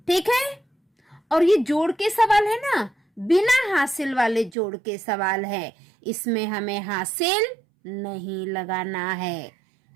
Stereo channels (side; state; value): left; drops out; at 4.5 s